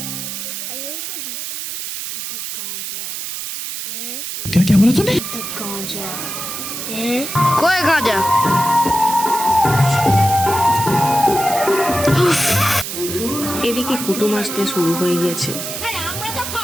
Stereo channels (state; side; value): noise; right; hiss, 6 dB below the sound